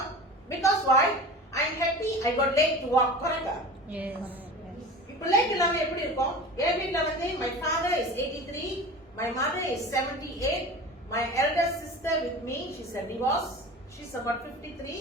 because why? I am happy I got late to walk. Correct? Yes. இப்போ late இல்லாம எப்படி இருக்கும்? என் வீட்ல வந்து my father is 83, my mother is 78, my elder sister with me, she's a divorce. She's about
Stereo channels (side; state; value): both; normal; correlation 0.35